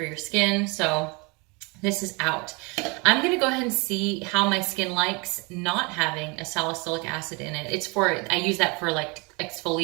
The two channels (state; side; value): quieter; left; 29.1 dB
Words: your skin. So this is out. I'm gonna go ahead and see how my skin likes not having a salicylic acid in it. I use that for like